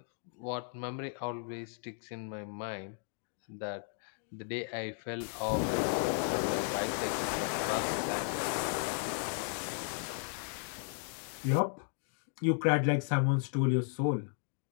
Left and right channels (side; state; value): right; silent; 54 dB below the other